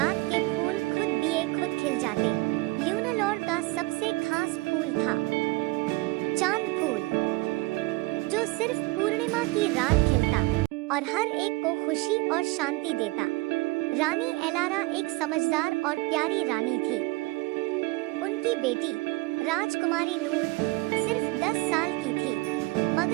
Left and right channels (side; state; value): left; quieter; 23.2 dB